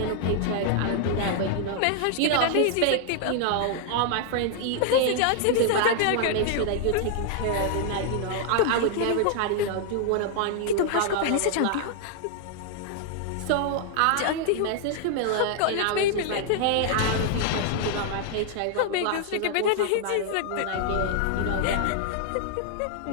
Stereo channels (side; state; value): both; different; correlation 0.00